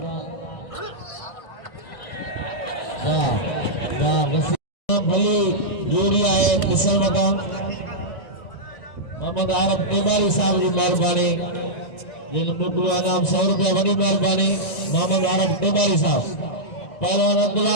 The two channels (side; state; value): right; late; 1.9 ms